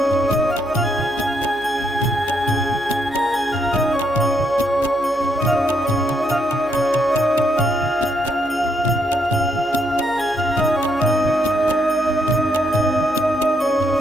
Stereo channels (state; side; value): noise; right; hum, 22 dB below the sound